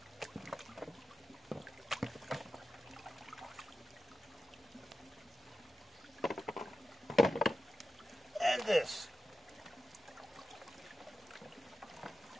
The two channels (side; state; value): both; normal; correlation 0.91